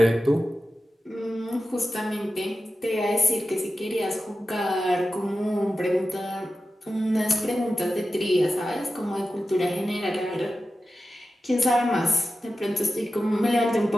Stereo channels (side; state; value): both; normal; correlation 0.93